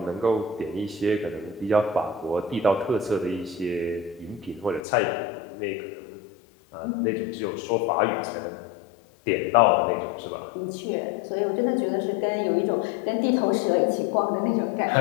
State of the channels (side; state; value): right; drops out; at 4.8 s